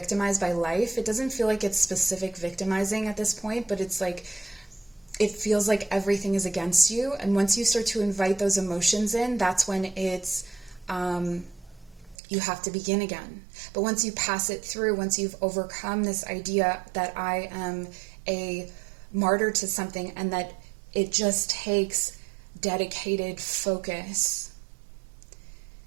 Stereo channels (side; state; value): left; drops out; at 12.2 s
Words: by life. It doesn't feel like it's specific victimizing at this point, but it's like, it feels like everything is against you. And once you start to invite those emotions in, that's when it's you have to begin again. But once you pass it through, once you've overcome this idea that I am a martyr to something and that it just takes dedicated focus,